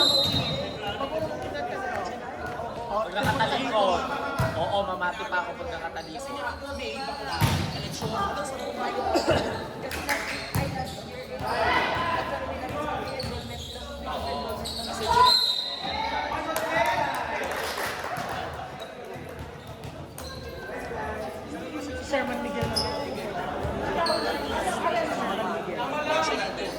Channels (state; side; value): identical; both; correlation 1.00